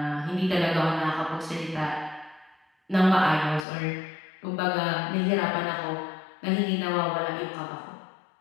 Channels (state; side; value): drops out; right; at 3.7 s